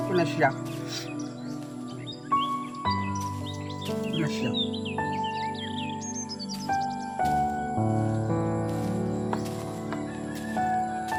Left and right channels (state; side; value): identical; both; correlation 1.00